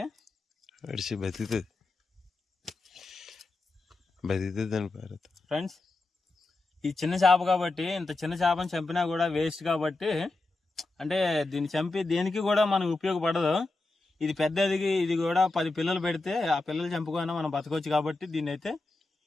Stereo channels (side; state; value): right; quieter; 3.2 dB